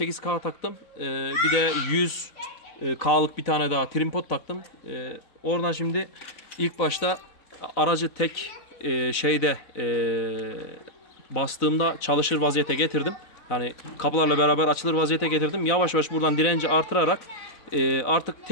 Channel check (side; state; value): right; late; 3.9 ms